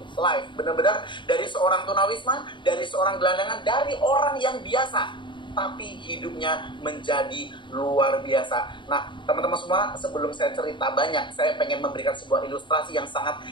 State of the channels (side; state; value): right; late; 0.23 ms